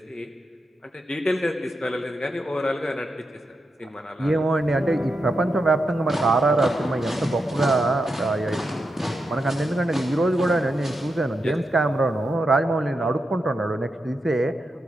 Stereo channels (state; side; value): normal; both; correlation 0.87